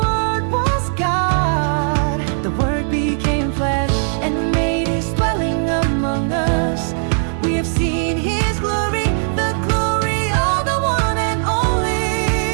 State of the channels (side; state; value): left; silent; digital silence